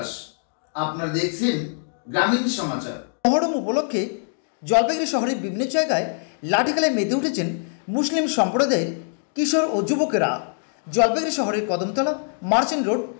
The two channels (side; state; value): right; silent; digital silence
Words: আপনারা দেখছেন গ্রামীণ সমাচার। মহরম উপলক্ষে জলপাইগুড়ি শহরের বিভিন্ন জায়গায় লাঠি খেলায় মেতে উঠেছেন মুসলিম সম্প্রদায়ের কিশোর ও যুবকেরা। জলপাইগুড়ি শহরের কদমতলা, মার্চেন্ট রোড,